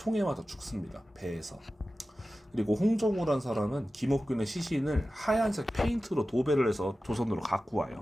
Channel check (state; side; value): normal; both; correlation 0.94